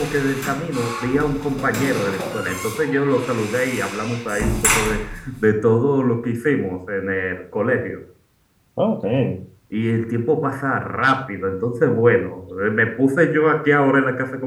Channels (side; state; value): both; identical; correlation 1.00